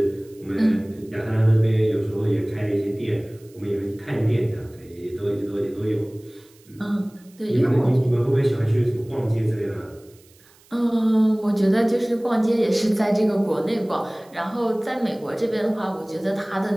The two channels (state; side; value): noise; right; hiss, 29 dB below the sound